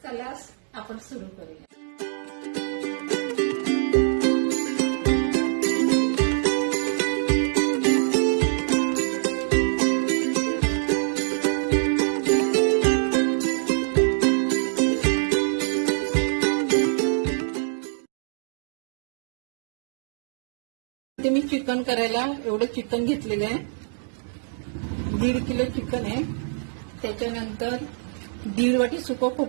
चला आपण सुरू करूया. ते मी चिकन करायला एवढं चिकन घेतलेलं आहे. 1.5 किलो चिकन आहे. त्याच्यानंतर 1.5 वाटी सुकं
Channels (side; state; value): left; silent; digital silence